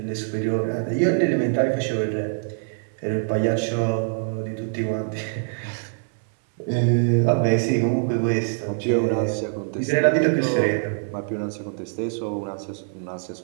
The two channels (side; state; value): left; silent; digital silence